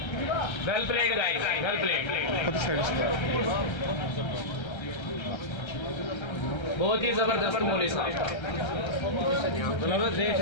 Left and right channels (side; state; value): right; late; 1.3 ms